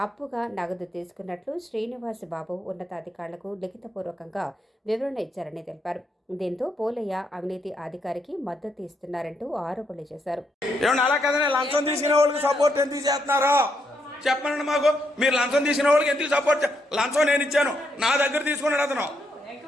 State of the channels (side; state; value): both; normal; correlation 0.78